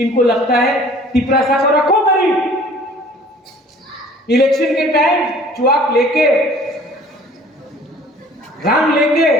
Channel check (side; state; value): both; normal; correlation 0.51